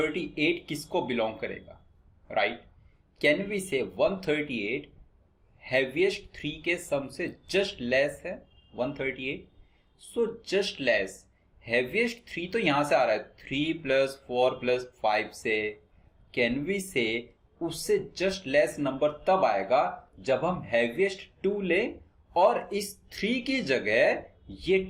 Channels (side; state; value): both; identical; correlation 1.00